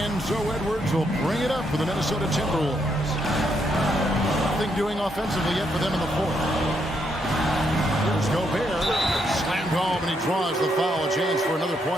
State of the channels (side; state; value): both; normal; correlation 0.77